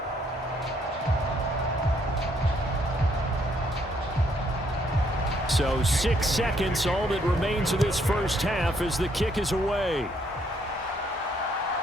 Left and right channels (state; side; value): normal; both; correlation 0.70